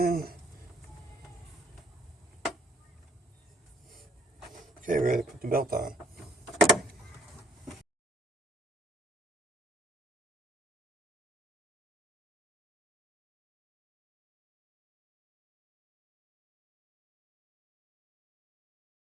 Okay, ready to put the belt on.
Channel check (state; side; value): normal; both; correlation 0.62